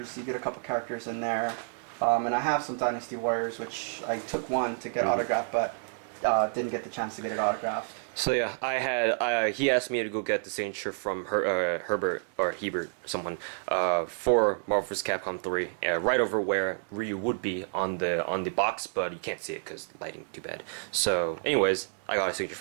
He did a couple characters in there. And I have some Dynasty Warriors, which I took one to get autographed, but didn't get the chance to get it autographed. So yeah, I had he asked me to go get the signature from Herbert or Hebert, someone, for Marvel vs. Capcom 3, right over where Ryu would be on the box, but you can't see it because lighting too bad. So, anyways, I got a signature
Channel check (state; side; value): silent; left; digital silence